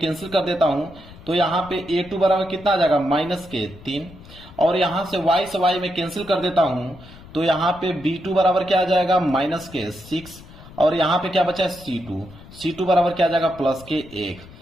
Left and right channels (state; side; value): noise; left; rumble, 19 dB below the sound